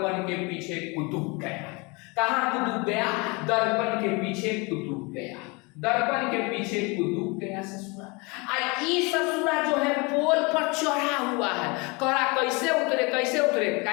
के पीछे कुतुब गया। कहां कुतुब गया, दर्पण के पीछे कुतुब गया, दर्पण के पीछे कुतुब गया ससुरा। ससुरा जो है पोल पर चढ़ा हुआ है, कहा कैसे उतरे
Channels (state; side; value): quieter; right; 28.0 dB